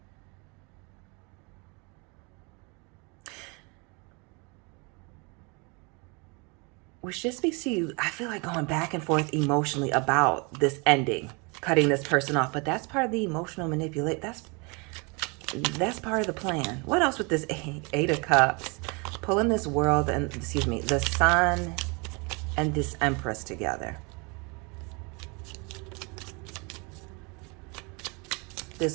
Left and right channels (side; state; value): left; quieter; 30.4 dB